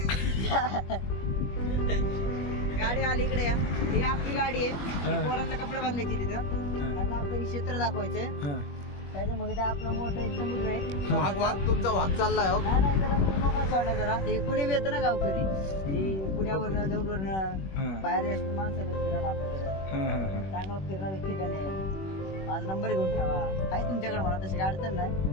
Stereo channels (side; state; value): right; late; 21 ms